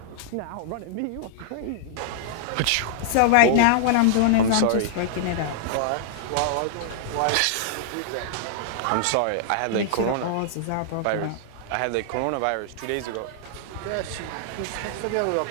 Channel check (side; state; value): both; different; correlation -0.01